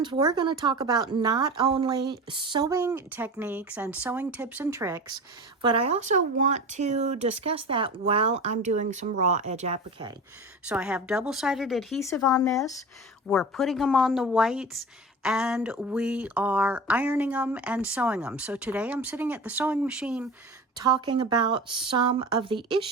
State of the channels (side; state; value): both; normal; correlation 0.33